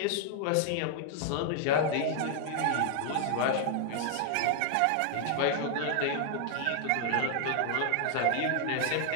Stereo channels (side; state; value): both; different; correlation 0.00